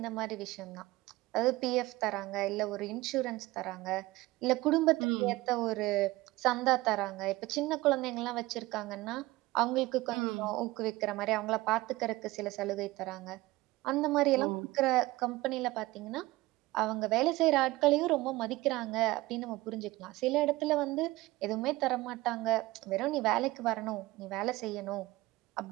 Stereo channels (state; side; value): quieter; left; 19.3 dB